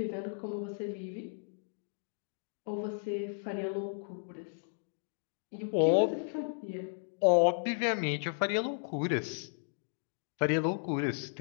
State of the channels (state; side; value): silent; right; digital silence